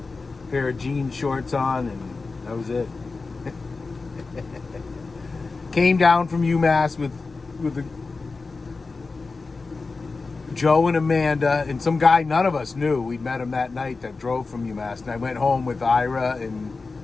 pair of jean shorts on, and that was it. Came down from UMass with Joe and Amanda and some guy none of us knew. We'd met him that night that drove from UMass. And I went home with Ira and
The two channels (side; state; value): right; quieter; 4.0 dB